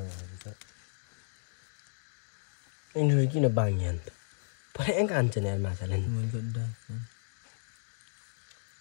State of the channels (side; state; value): right; silent; digital silence